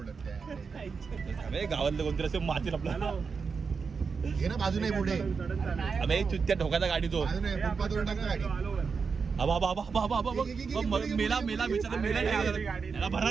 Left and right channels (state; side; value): quieter; left; 5.3 dB